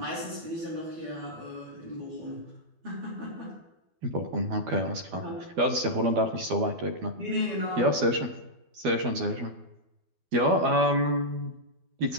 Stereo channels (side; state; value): left; late; 12 ms